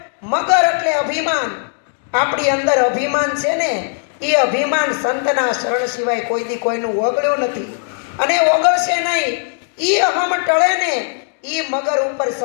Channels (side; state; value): right; silent; 67 dB below the other